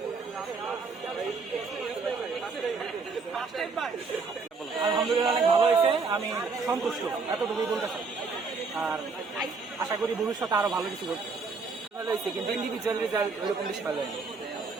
আলহামদুলিল্লাহ অনেক ভালো হয়েছে, আমি সন্তুষ্ট, এতটুকুই বলতে চাই। আর আশা করি ভবিষ্যতে আরো ভালো কিছু করতে। ভালো হয়েছে, কিন্তু ইন্ডিভিজুয়াল রেজাল্ট ওরকম বেশি ভালো হয়নি।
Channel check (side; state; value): left; quieter; 4.5 dB